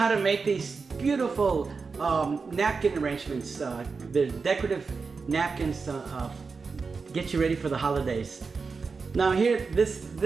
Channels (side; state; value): left; quieter; 4.8 dB